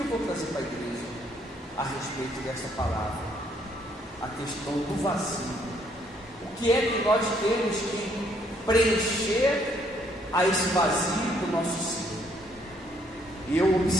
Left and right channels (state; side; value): normal; both; correlation 0.68